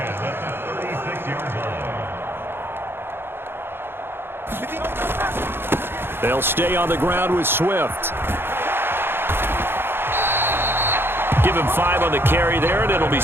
They'll stay on the ground with Swift. Give him 5 on the carry there, and it'll be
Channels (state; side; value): late; left; 0.11 ms